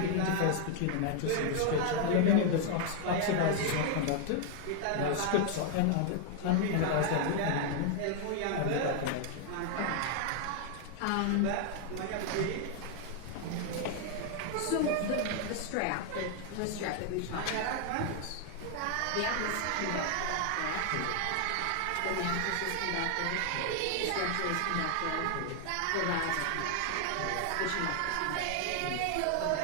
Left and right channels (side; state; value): both; different; correlation 0.00